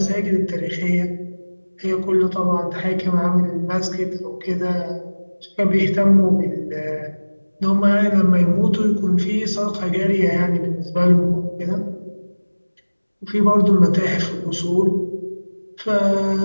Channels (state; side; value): inverted; both; correlation -1.00